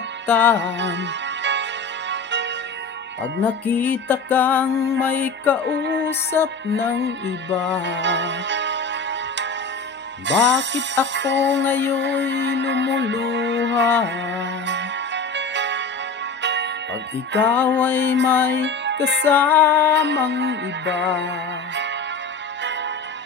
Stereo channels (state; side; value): quieter; right; 4.0 dB